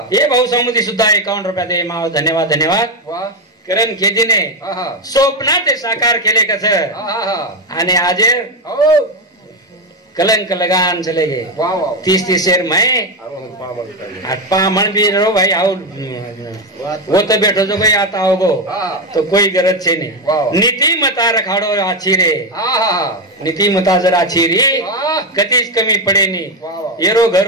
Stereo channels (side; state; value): both; normal; correlation 0.10